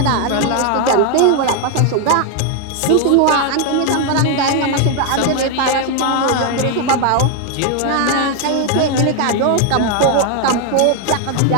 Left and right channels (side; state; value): both; different; correlation 0.01